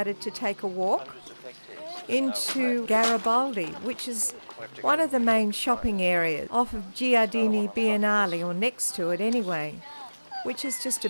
to take a walk into Garibaldi, which is one of the main shopping areas off of Giardini Biennale, or next to it anyway, which is just a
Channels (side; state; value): both; inverted; correlation -1.00